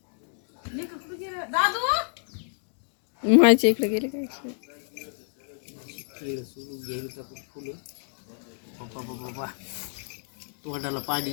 माझ्या इकडे गेले काय केळ सोडून घ्यायला आपण फुलं. बाबा तोंडाला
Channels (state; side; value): silent; right; digital silence